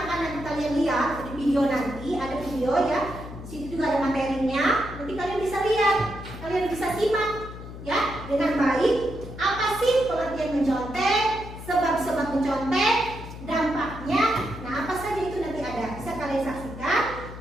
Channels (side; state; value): left; noise; hum, 12 dB below the sound